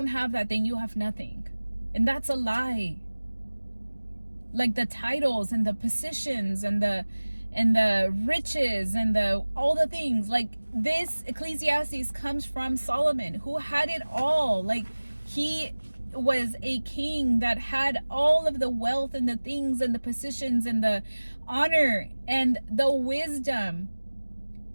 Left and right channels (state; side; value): inverted; both; correlation -1.00